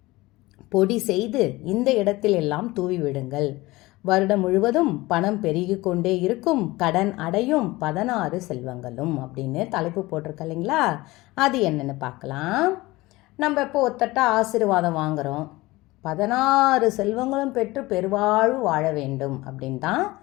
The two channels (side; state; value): right; quieter; 20.2 dB